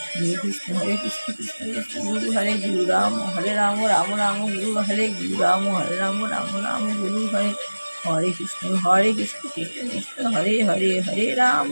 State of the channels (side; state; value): both; inverted; correlation -1.00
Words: হরে কৃষ্ণ কৃষ্ণ কৃষ্ণ গুরু হরে, গুরু রাম হরে রাম রাম গুরু হরে, গুরু রাম হরে রাম গুরু হরে, হরে কৃষ্ণ কৃষ্ণ কৃষ্ণ হরে হরে, হরে রাম